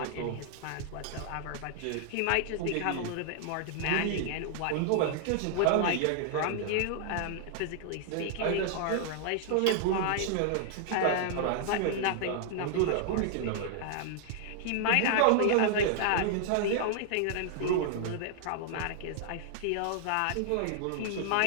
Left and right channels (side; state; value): both; different; correlation -0.01